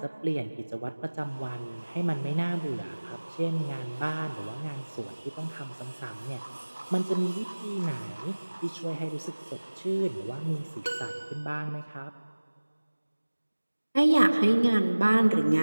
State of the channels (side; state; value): both; inverted; correlation -1.00